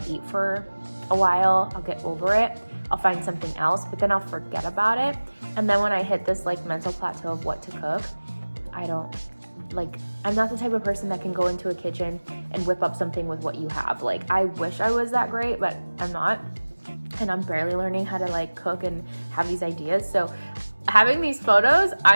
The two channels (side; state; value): both; inverted; correlation -1.00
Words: eat for a while, I'll get over it, I'll find something else, but then I'll forget about it. And then when I hit this like mental plateau of what to cook, I'm not the type of person that can go into a kitchen and whip up something with what you have. Like, I wish I was that great, but I'm not. And I'm barely learning how to like cook and have these ideas. So having these photos,